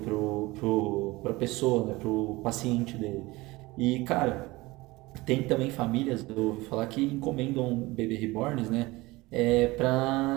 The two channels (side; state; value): left; quieter; 21.2 dB